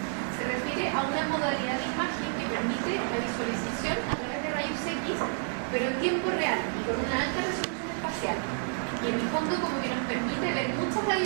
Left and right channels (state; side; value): silent; left; 58 dB below the other